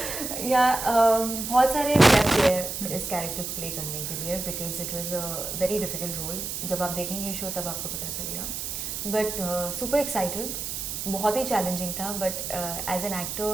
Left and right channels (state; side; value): noise; right; hiss, 5 dB below the sound